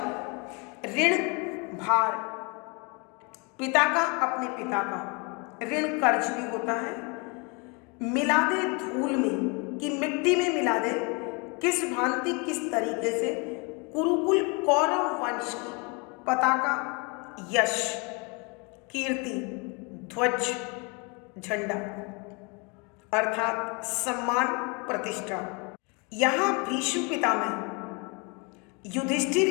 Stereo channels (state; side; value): quieter; right; 31.4 dB